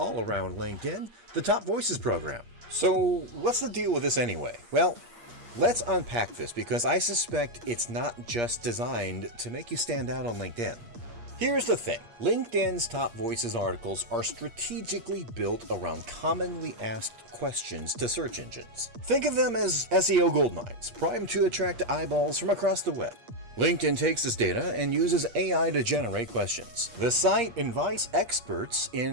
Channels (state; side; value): late; left; 8.5 ms